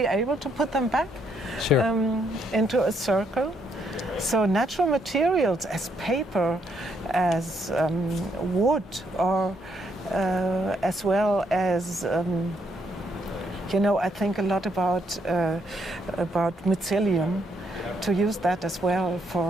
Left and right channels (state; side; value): normal; both; correlation 0.74